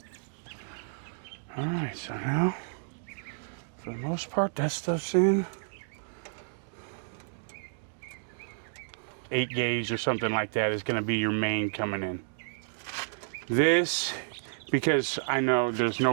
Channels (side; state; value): left; silent; digital silence